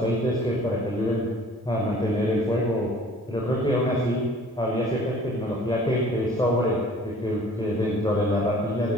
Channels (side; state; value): both; normal; correlation 0.51